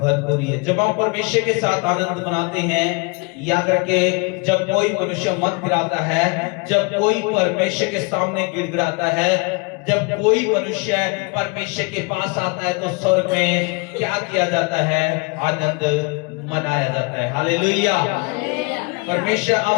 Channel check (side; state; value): right; quieter; 30.1 dB